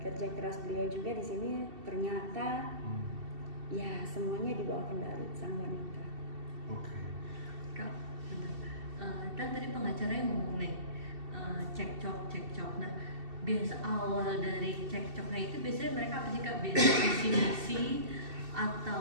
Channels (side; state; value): left; late; 2.7 ms